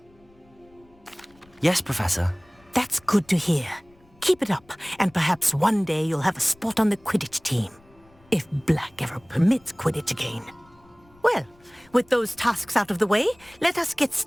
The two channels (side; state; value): left; noise; rumble, 30 dB below the sound